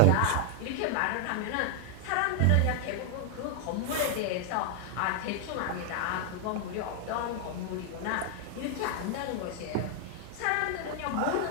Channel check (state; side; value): different; both; correlation 0.00